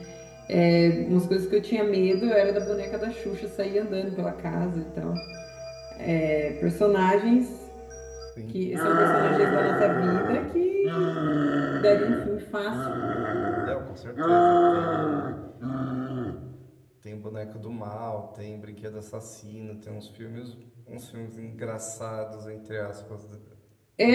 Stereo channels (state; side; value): identical; both; correlation 1.00